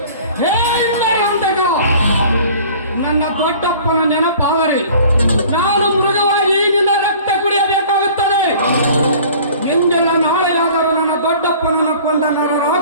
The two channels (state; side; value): inverted; both; correlation -0.47